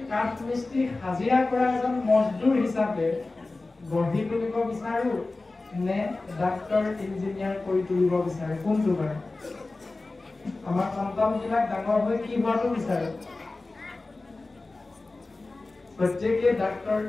কাঠ মিস্ত্ৰী, হাজিৰা কৰা এজন মজদুৰ হিচাপে গঢ়ি তুলিব বিচাৰোঁ নে ডাক্তৰ ইঞ্জিনিয়াৰ কৰি তুলিব বিচাৰোঁ? কোনটো বাৰু? আমাৰ সন্তানবিলাক ডাঙৰ হৈ কি হোৱাটো বিচাৰোঁ? প্ৰত্যেকে ডাক্তৰ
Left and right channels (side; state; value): right; quieter; 3.3 dB